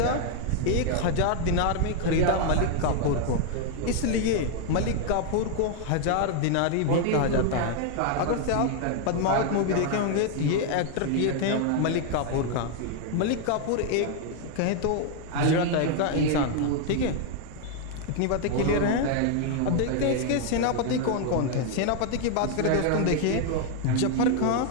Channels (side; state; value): both; different; correlation 0.00